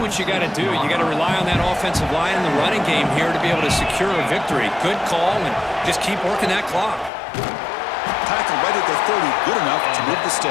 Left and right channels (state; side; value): drops out; right; at 7.1 s